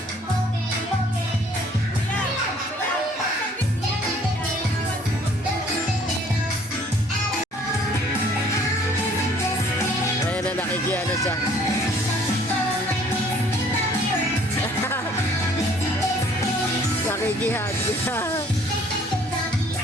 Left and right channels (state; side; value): normal; both; correlation 0.58